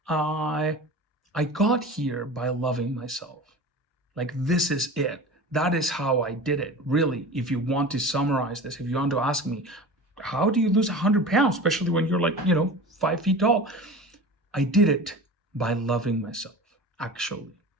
"I I got here by loving myself. Like this is it. That is how I did it. Really, if you want to summarize this, if you want to ask me, how do you lose 100 pounds, especially when you're like 5 feet tall? I did it by loving myself, actually.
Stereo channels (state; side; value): normal; both; correlation 0.35